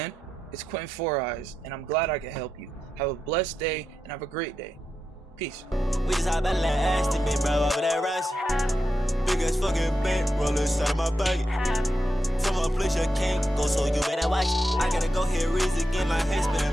It's Quentin Four Eyes, and I'm glad I could help you. Have a blessed day and have a great day. Peace. We just hop out that ass to me, bro, over that rush. Big ass fucking bank roll inside of my pocket. From a place you can't go, so you better watch it. I gotta go here, raise again, my head spinning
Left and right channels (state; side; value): normal; both; correlation 0.87